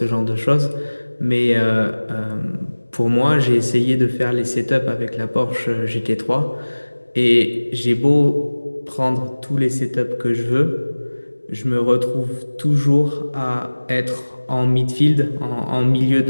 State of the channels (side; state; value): both; inverted; correlation -1.00